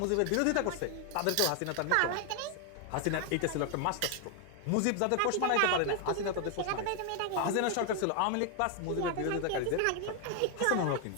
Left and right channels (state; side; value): different; both; correlation 0.01